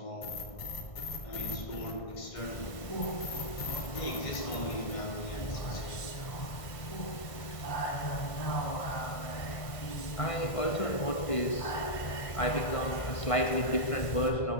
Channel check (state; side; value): late; right; 1.5 ms